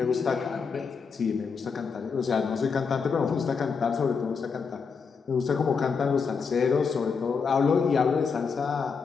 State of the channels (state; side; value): quieter; right; 5.5 dB